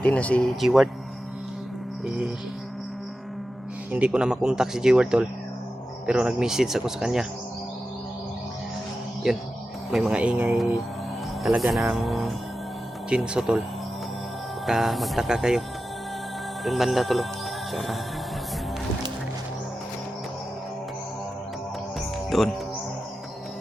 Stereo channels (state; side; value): normal; both; correlation 0.92